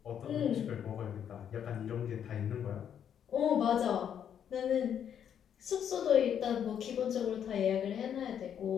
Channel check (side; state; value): right; quieter; 8.9 dB